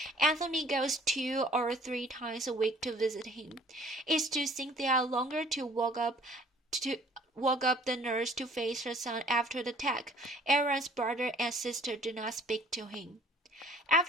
Anthony goes 2 or 3 times a week to visit him. It took Cynthia longer to walk up woke up the nurse to face her son after the attack. Aaron's brother and sister did not speak to him.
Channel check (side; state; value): both; normal; correlation 0.53